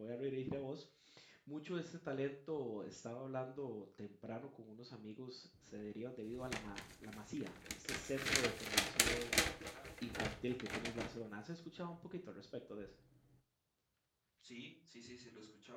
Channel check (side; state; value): both; identical; correlation 1.00